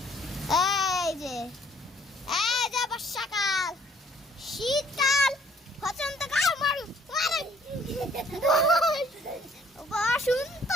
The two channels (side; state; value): both; normal; correlation 0.61